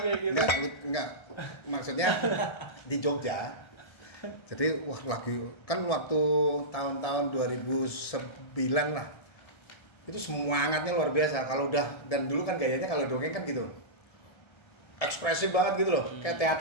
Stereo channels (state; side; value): late; right; 1.3 ms